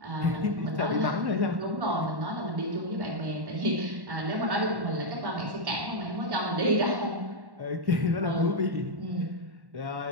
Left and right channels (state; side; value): late; left; 1.1 ms